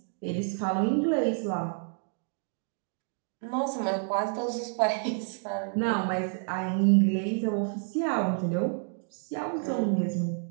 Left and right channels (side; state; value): left; silent; 58 dB below the other